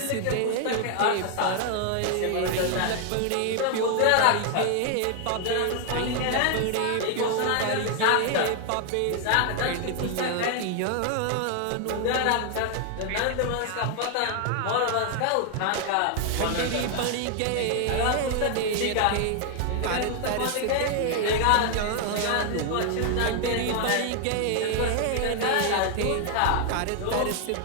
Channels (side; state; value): both; different; correlation 0.00